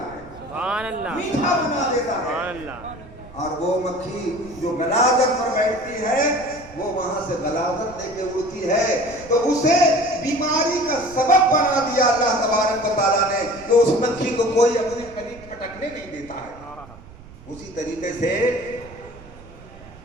ہے، سبحان اللہ، میٹھا بنا دیتا ہے۔ سبحان اللہ۔ اور وہ مکھی جو غلاظت پر بیٹھتی ہے وہ وہاں سے غلاظت لے کے اڑتی ہے، تو اسے بیماری کا سبب بنا دیا اللہ تبارک و تعالیٰ نے، کہ اس مکھی کو کوئی اپنے قریب پھٹکنے نہیں دیتا ہے۔ اسی طریقے سے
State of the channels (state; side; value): noise; right; rumble, 19 dB below the sound